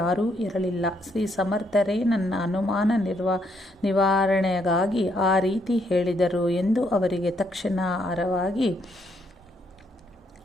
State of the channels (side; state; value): both; normal; correlation 0.73